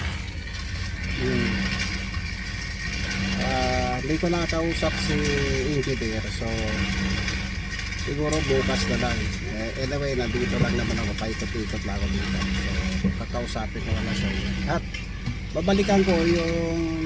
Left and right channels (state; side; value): identical; both; correlation 1.00